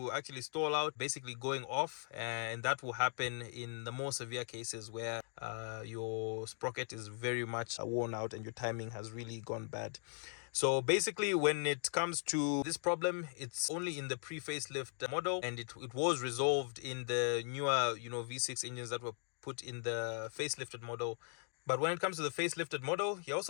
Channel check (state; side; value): silent; right; 52 dB below the other